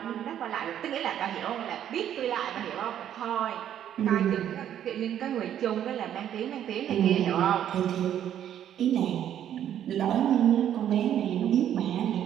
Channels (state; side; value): quieter; left; 10.4 dB